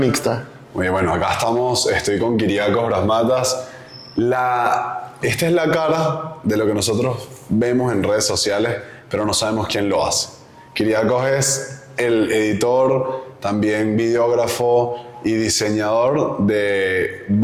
Muy bien, bueno, acá estamos, estoy con Kyriakos Brasmatas. Esta es la cara de lo que nosotros vemos en redes sociales, pero no sabemos quién lo hace. Kyriakos es el editor, también videógrafo y diseñador de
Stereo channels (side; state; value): both; identical; correlation 1.00